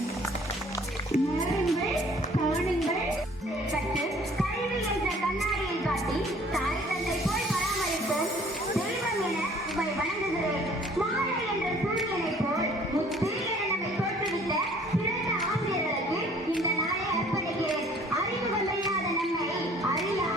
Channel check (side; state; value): both; normal; correlation 0.55